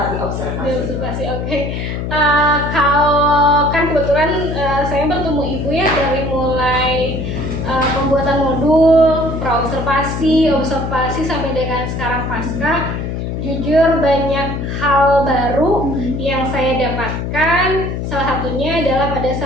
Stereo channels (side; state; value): left; noise; hum, 4 dB below the sound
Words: diobservasi. Oke. Kalau kan kebetulan saya bertemu Ibu ya dari mulai pembuatan modul, pra-observasi, observasi sampai dengan sekarang pasca. Jujur banyak hal baru yang saya dapatkan. Salah satunya adalah pada